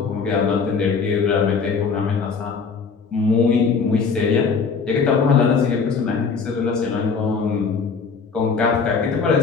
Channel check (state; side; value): quieter; right; 5.3 dB